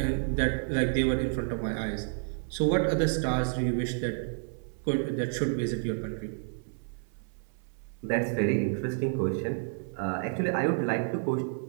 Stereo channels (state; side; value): silent; left; 58 dB below the other